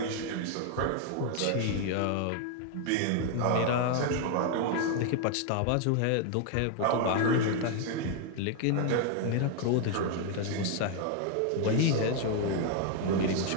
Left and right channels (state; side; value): different; both; correlation 0.01